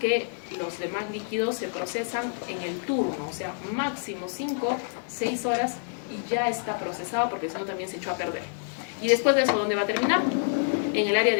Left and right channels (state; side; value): silent; right; 60 dB below the other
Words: los demás líquidos, se procesan en el turno. O sea, máximo 5, 6 horas y ya está procesado, porque si no también se echó a perder. Y después de eso, ¿dónde va a terminar? En el área